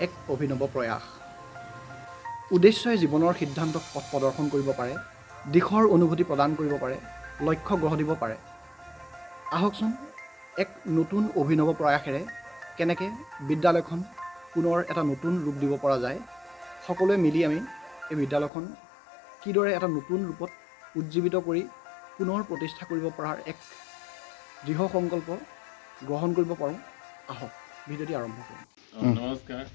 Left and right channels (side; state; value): right; drops out; at 18.5 s